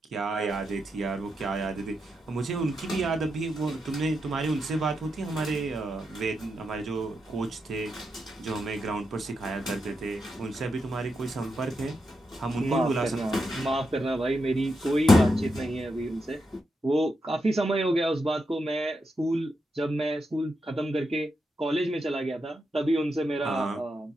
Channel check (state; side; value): normal; both; correlation 0.85